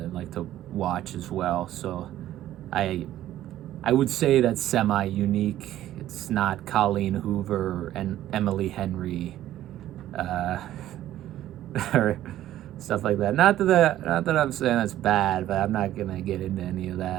like to watch as well. So I I would say that's semi-unique. It's not Colleen Hoover and Emily Henry, or stuff like that. Not that I'm saying that's bad, but I'm not gonna get into any of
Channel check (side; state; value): left; quieter; 13.2 dB